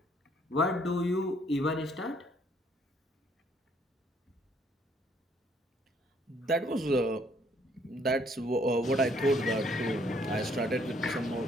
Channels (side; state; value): both; normal; correlation 0.65